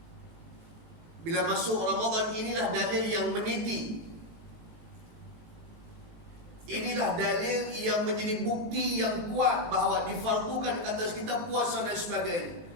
Bila masuk Ramadan, inilah dalil yang meniti. Inilah dalil yang menjadi bukti yang kuat bahawa difardukan ke atas kita puasa dan sebagainya.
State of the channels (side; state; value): left; late; 18 ms